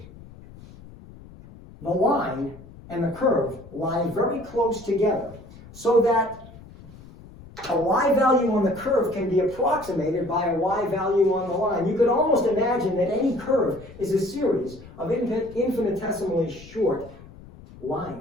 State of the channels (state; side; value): noise; left; rumble, 19 dB below the sound